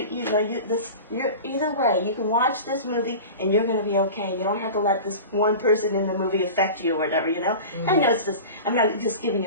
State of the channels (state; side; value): inverted; both; correlation -0.33